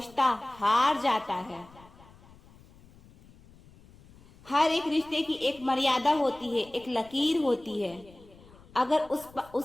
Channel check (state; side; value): noise; left; rumble, 24 dB below the sound